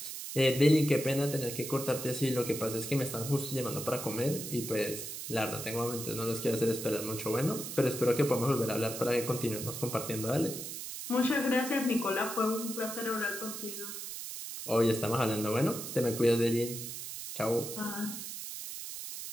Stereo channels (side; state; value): right; noise; hiss, 7 dB below the sound